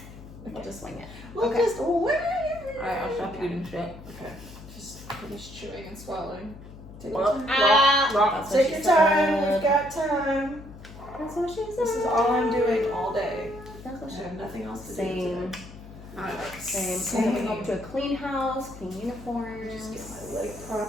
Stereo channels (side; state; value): left; noise; hum, 16 dB below the sound